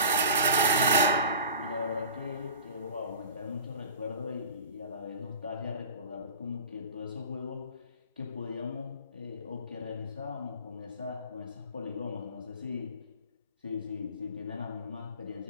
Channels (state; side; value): inverted; both; correlation -0.40